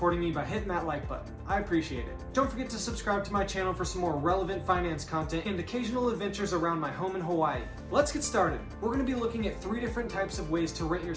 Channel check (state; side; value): identical; both; correlation 1.00